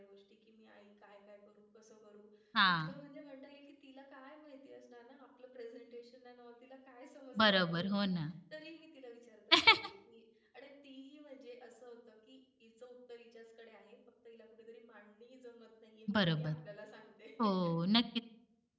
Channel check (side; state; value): both; identical; correlation 1.00